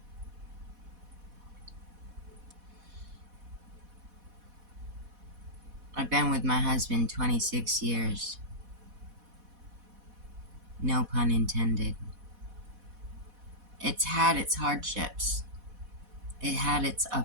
I've been with my husband 26 years. No pun intended. It's had its hardships. It had its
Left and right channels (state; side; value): late; left; 4.1 ms